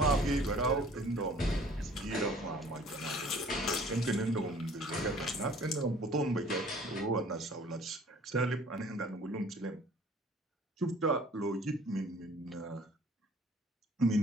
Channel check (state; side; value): normal; both; correlation 0.52